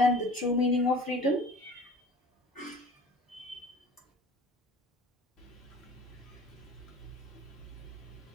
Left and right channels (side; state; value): both; normal; correlation 0.44